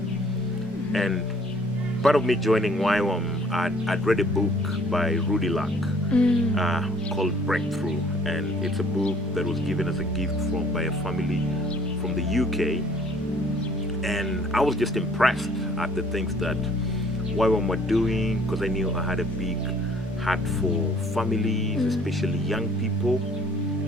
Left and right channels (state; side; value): normal; both; correlation 0.57